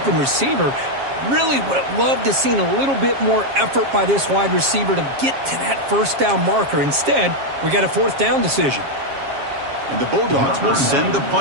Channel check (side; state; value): left; late; 7.4 ms